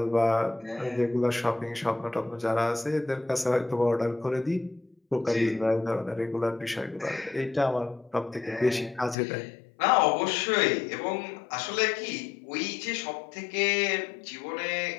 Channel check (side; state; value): right; drops out; at 9.2 s